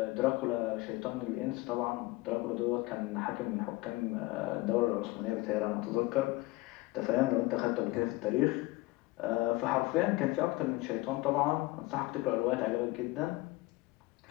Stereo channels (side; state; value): right; quieter; 20.7 dB